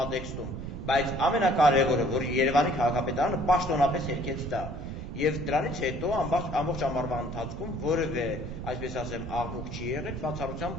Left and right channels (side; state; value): right; noise; rumble, 7 dB below the sound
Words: բայց ամենակարևորը, որ Երևանի քաղաքապետարանը պաշտոնապես հերքեց դա։ Եվ դրանից հետո ամբողջ ամառվա ընթացքում որևէ, այսպես ասեմ, աղմուկ չի եղել,